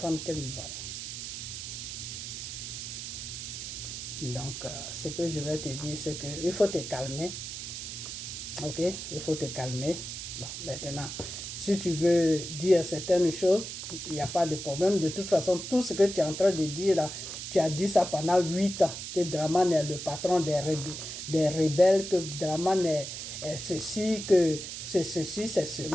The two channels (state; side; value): noise; right; hiss, 7 dB below the sound